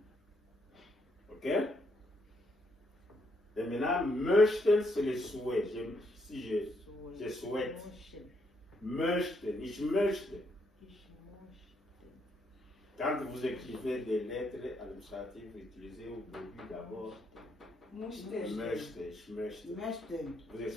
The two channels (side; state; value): both; normal; correlation 0.75